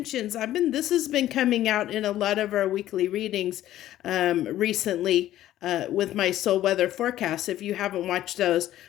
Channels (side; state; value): right; quieter; 13.4 dB